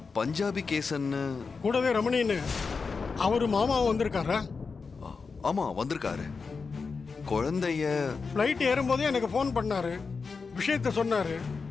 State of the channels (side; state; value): right; quieter; 4.8 dB